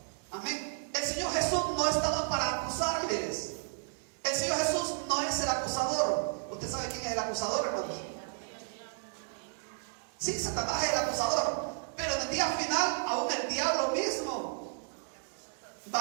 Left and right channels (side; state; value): left; silent; digital silence